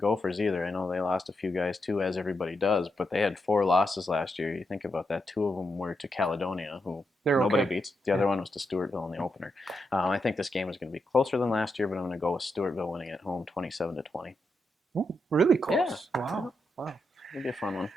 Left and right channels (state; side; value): normal; both; correlation 0.84